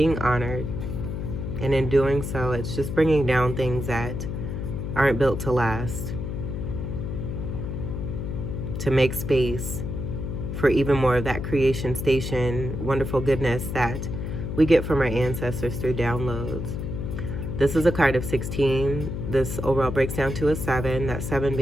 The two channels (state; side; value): noise; left; hum, 4 dB below the sound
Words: honored, and in doing so, it's just bringing down things that aren't built to last, to make space for even more of that creation station, wonderful goodness that we get from our ancestors through downloads. This is a card of 16. This overall breaks down to a 7, that 7